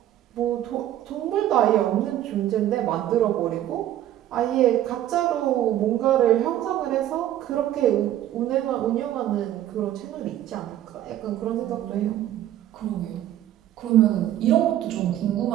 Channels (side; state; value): left; quieter; 12.4 dB